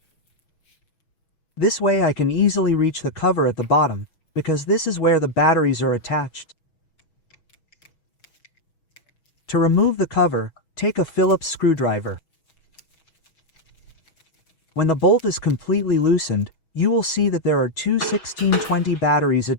This way I can easily reach the cover at the bottom, because this is where the batteries are attached. To remove the cover, take a Phillips screwdriver. When the bolt is completely loosened, you will see that there are two 1620 batteries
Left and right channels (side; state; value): right; late; 6.2 ms